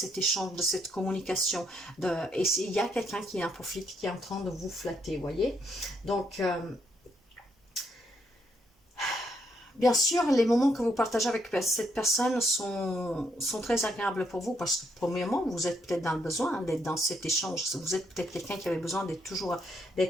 échange, de cette communication. Et il y a quelqu'un qui en profite, qui est en train de vous flatter, vous voyez. Donc, bien sûr, les moments que vous partagez avec cette personne sont très agréables pour vous parce que, premièrement, vous êtes peut-être dans le besoin d'être dans cet échange. Vous êtes peut-être quelqu'un qui avait besoin d'être toujours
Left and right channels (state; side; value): normal; both; correlation 0.74